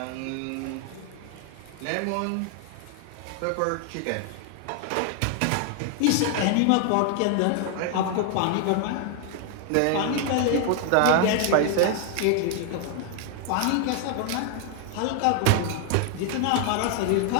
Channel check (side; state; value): both; different; correlation 0.00